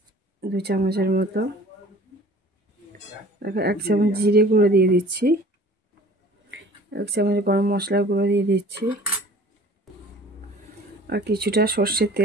2 চামচের মতো। দেখো 1 চামচ জিরে গুঁড়ো দিয়ে দিচ্ছি, 1 চামচ গরম মশলার গুঁড়ো দিয়ে দিচ্ছি। আর কিছুটা সর্ষের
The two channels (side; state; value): both; normal; correlation 0.48